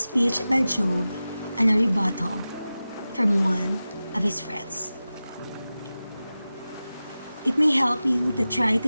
by Job and a rebuttal from one of his friends. It may help you to try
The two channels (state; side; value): inverted; both; correlation -0.95